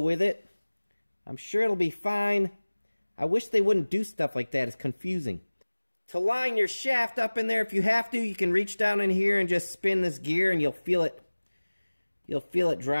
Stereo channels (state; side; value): inverted; both; correlation -1.00